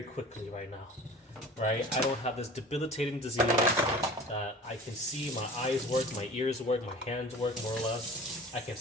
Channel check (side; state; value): both; normal; correlation 0.41